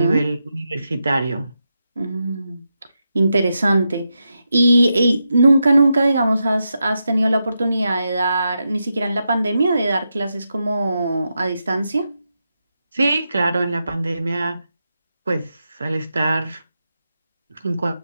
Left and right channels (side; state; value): both; inverted; correlation -0.86